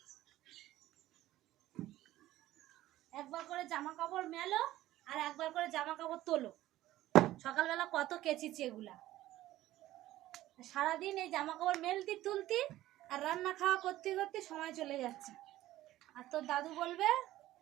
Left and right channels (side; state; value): left; quieter; 15.1 dB